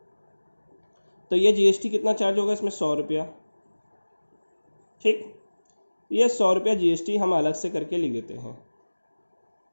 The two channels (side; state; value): both; inverted; correlation -1.00